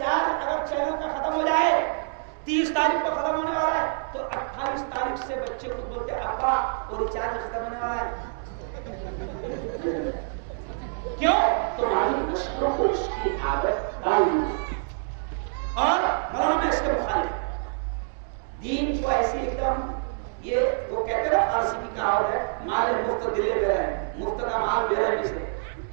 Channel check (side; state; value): left; silent; digital silence